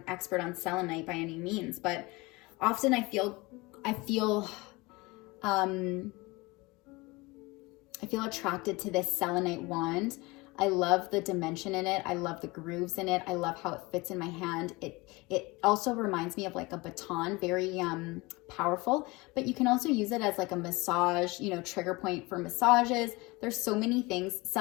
expert on selenite by any means, but often I feel attracted to this selenite wand. I love the dimension in it. I love the grooves in it. I love how it fits in my hand. It also reminds me of like a baton, very powerful, but you can also use it as like a massage, you know, trigger point for massages, There's so many things.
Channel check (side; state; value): right; quieter; 23.6 dB